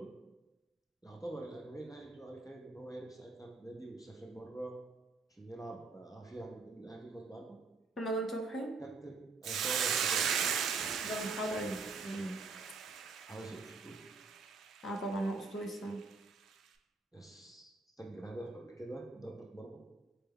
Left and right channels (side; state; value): left; quieter; 4.4 dB